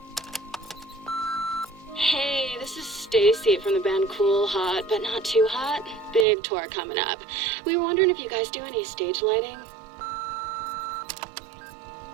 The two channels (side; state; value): left; drops out; at 6.2 s